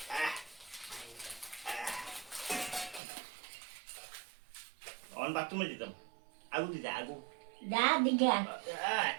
অন বাথরুমে যেতাম, আগু দিতে আগু যা দিকে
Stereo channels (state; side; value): drops out; left; at 3.0 s